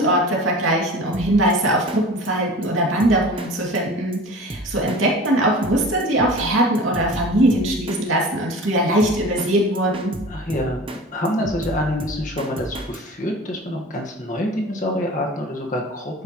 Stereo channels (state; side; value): normal; both; correlation 0.39